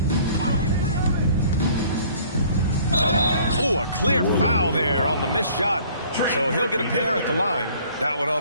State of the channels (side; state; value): both; inverted; correlation -0.54